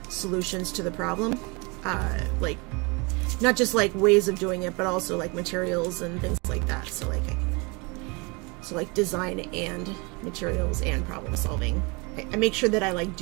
solutions to the problem. Like not just like ways of doing it, but also like materials and things like that. So like design and materials and problem solving. I make sure that I like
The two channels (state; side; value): quieter; left; 28.9 dB